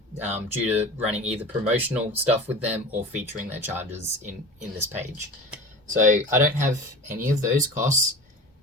due to running either promotional stuff with them or featuring their chargers in this page. So I don't have any of those costs.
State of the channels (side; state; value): both; normal; correlation 0.35